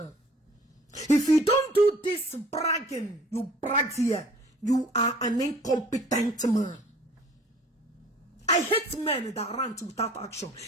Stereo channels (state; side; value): normal; both; correlation 0.51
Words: If you don't do this bragging, you brag here, you are an incompetent man. I hate men that rant without action.